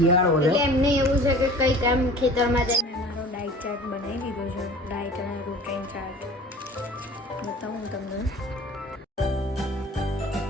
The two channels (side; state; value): both; normal; correlation 0.43